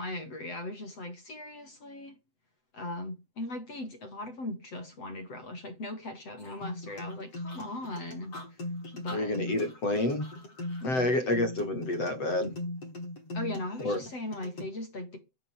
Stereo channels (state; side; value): late; right; 7.9 ms